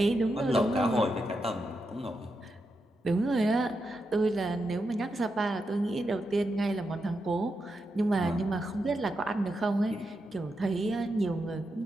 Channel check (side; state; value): both; normal; correlation 0.86